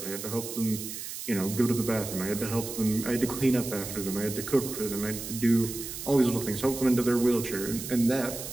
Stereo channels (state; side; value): noise; right; hiss, 8 dB below the sound